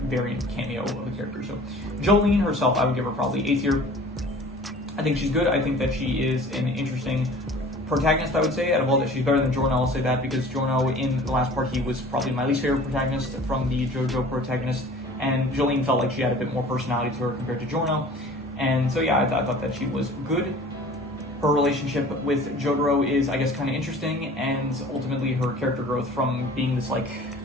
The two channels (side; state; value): both; normal; correlation 0.45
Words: variant cameo of a character. So Jolene herself, I would give her probably A tier. I think she's good. I think that she is an interesting protagonist, I would say. Out of all that, she's better than Giorno, I'll say that, because Giorno, in the last part, he was probably my least favorite protagonist from the Jojo protagonist, and Jolene felt like she had a bit more personality to her compared to Giorno. And so yeah, I thought that she was good. Her relationship with Jotaro is, I guess, kind of interesting, and ultimately her character growth from being this like